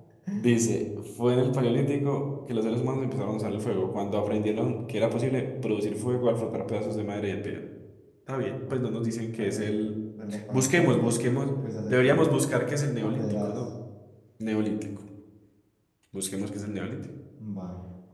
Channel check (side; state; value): both; identical; correlation 1.00